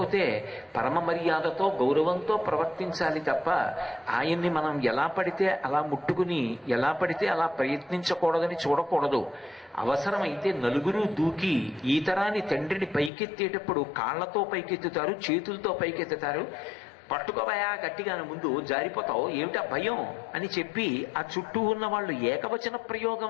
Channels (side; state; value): right; drops out; at 13.1 s